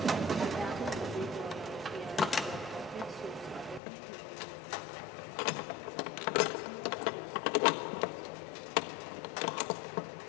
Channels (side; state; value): right; drops out; at 3.8 s